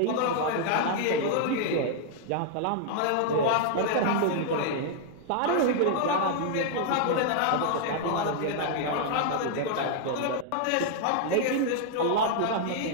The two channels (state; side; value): different; both; correlation -0.01